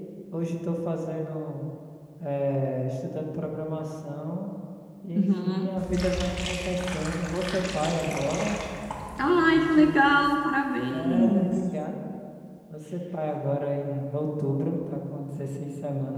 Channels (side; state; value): both; identical; correlation 1.00